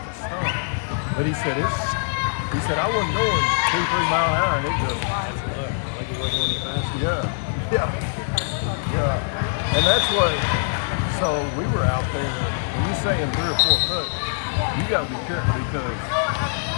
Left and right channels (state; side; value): silent; right; digital silence